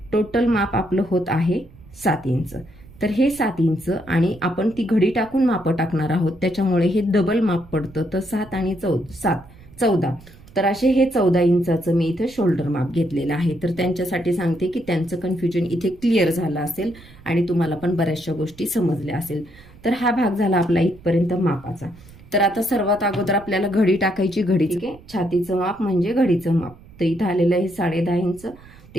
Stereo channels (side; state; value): right; noise; rumble, 22 dB below the sound